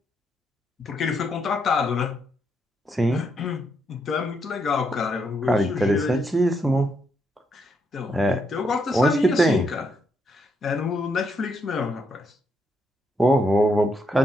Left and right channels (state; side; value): normal; both; correlation 0.77